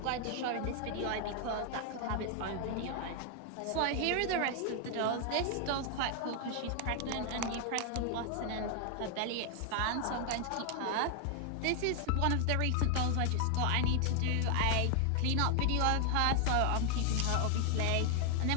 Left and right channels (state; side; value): different; both; correlation 0.00